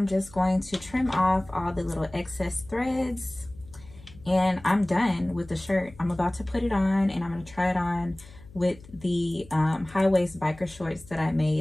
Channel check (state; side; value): noise; left; hum, 21 dB below the sound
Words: just going to trim off all the little excess threads, and I'm done with the shirt. I'm about to put it on, and I'm going to try it on with the high-waist biker shorts that I